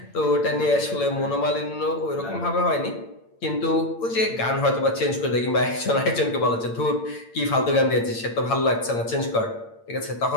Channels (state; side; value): late; right; 8.8 ms